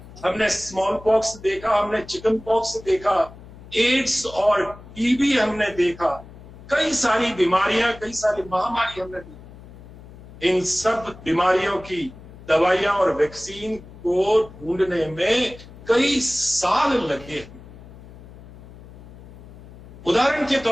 हमने स्मॉल पॉक्स देखा, हमने चिकन पॉक्स देखा, एड्स और टीबी हमने देखा, कई सारी बीमारियां, कई सारी महामारी हमने देखी। इन सब बीमारियों की दवाइयां और वैक्सीन को ढूंढने में कई साल लगे। उदाहरण के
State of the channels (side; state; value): left; noise; hum, 18 dB below the sound